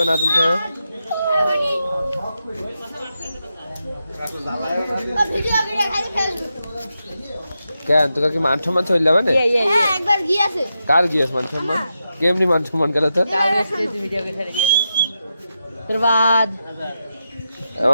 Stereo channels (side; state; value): both; inverted; correlation -0.87